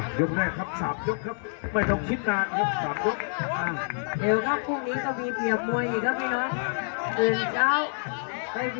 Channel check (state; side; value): silent; right; 60 dB below the other